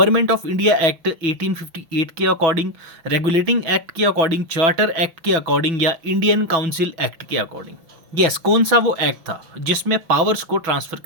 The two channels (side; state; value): left; late; 6.1 ms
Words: ऑफ इंडिया एक्ट 1858 के अकॉर्डिंग, रेगुलेटिंग एक्ट के अकॉर्डिंग, चार्टर एक्ट के अकॉर्डिंग, या इंडियन काउंसिल एक्ट के अकॉर्डिंग। यस, कौन सा वो एक्ट था जिसमें पावर्स को ट्रांसफर